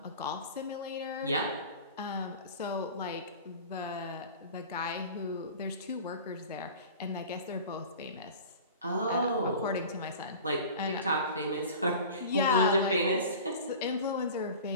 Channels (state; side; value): inverted; both; correlation -0.38